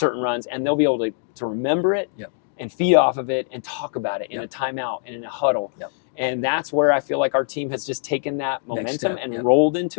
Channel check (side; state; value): right; silent; digital silence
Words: runs, and they'll be able to remember it and feed off of it and talk about it in a timeout and in a huddle. And that's where I feel like our team has just taken that momentum and rolled